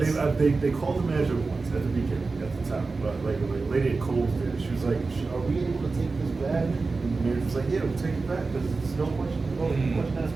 called the manager once at the beginning at the time, but like a lady at Kohl's did. She was like, are we able to take this back? And the manager was like, yeah, we'll take it back because it's no question. That's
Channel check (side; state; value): left; quieter; 4.0 dB